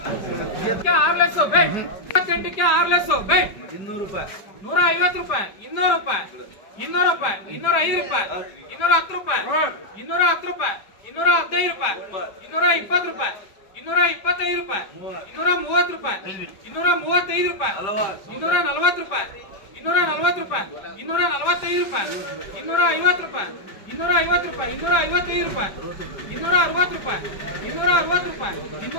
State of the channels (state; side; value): late; right; 4.9 ms